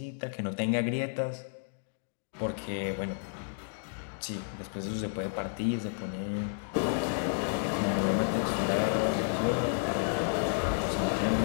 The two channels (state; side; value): silent; right; digital silence